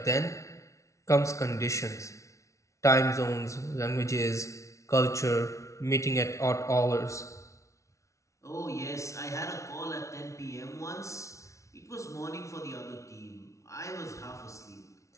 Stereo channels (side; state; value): right; late; 0.14 ms